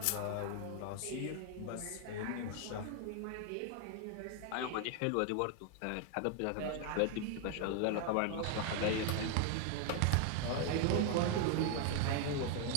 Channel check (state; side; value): different; both; correlation 0.00